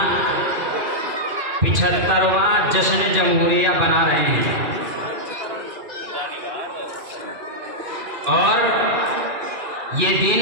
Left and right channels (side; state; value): left; late; 2.4 ms